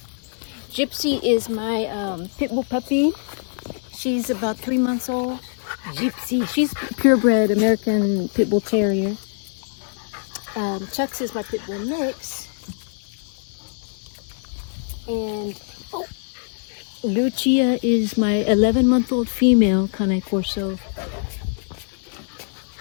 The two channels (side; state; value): right; silent; digital silence